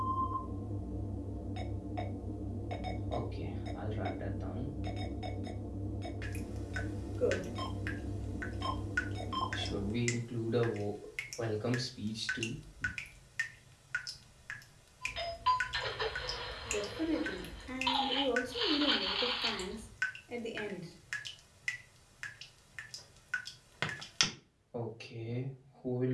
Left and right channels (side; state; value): both; identical; correlation 1.00